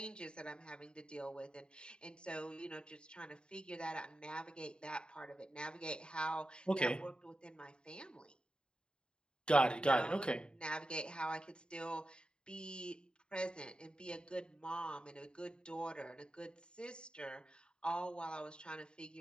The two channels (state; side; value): late; right; 0.051 ms